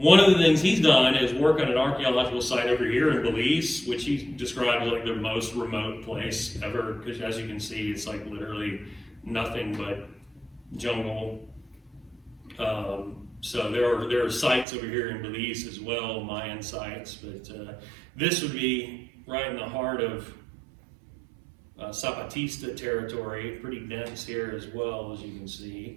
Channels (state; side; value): drops out; left; at 14.7 s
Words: of the things he's done is work on an archaeological site over here in Belize, which he described as like the most remote place ever, because as you can see, it's like literally nothing but jungle. So there are sites over here in Belize as well, Mayan sites, but this would be right in the heart of Zapatista territory, pretty dense here as well, as you can see.